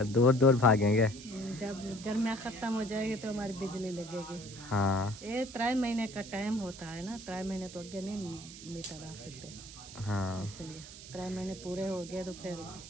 दूर दूर भागेंगे। जब गर्मियाँ खत्म हो जाएगी तो हमारी बिजली लगेगी। हाँ ये 3 महीने का टाइम होता है ना, 3 महीने तो आगे नहीं मीटर आ सकते, हाँ, इसलिए 3 महीने पूरे हो गए तो फिर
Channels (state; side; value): noise; right; hiss, 14 dB below the sound